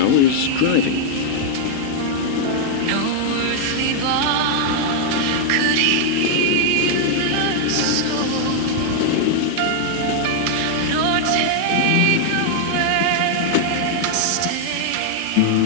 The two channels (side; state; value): both; different; correlation 0.00